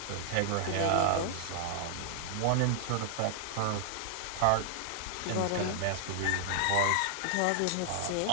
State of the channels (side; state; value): both; different; correlation 0.00